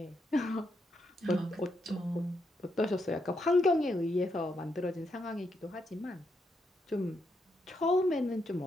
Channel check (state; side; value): normal; both; correlation 0.80